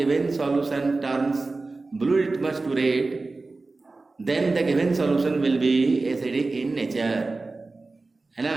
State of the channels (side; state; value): left; quieter; 3.5 dB